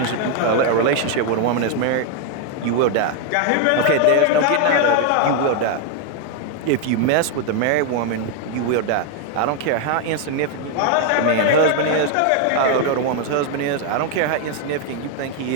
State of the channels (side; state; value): both; different; correlation 0.01